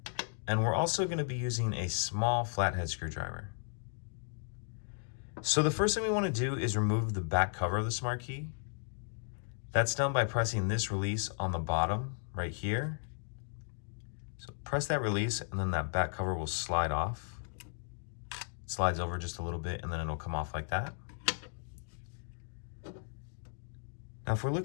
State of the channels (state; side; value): silent; right; digital silence